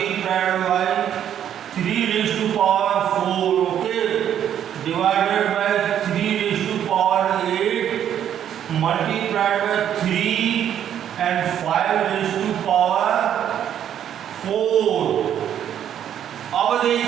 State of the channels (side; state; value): left; quieter; 9.9 dB